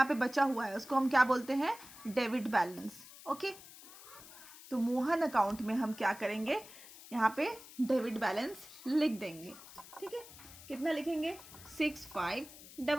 पे बचा हुआ है उसको हम क्या बोलते हैं? Debit balance. ओके, तो मोहन अकाउंट में हम क्या करेंगे? यहाँ पे डेबिट बैलेंस लिख देंगे, ठीक है। कितना लिखेंगे?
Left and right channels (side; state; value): left; noise; hiss, 18 dB below the sound